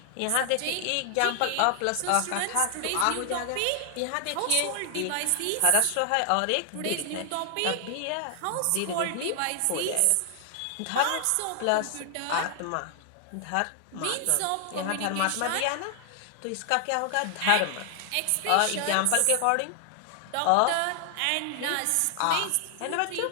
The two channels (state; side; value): different; both; correlation 0.00